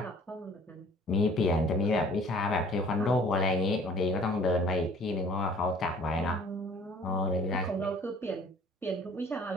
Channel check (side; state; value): both; normal; correlation 0.53